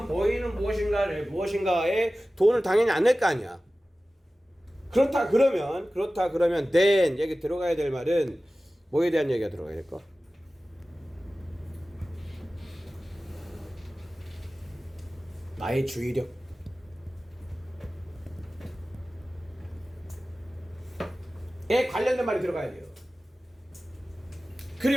보이는 무엇인가에 돈을 당연히 안 낼 거 아니야. 그렇다 그러면 then 여기 들어가야 될 말은 뭐에 대한 얘기가 들어가야 될까? 나의 주의력에 관련된 말이 들어가야 돼요.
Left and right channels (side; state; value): both; normal; correlation 0.96